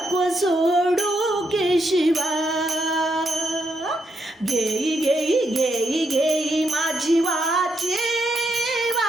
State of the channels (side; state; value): both; normal; correlation 0.79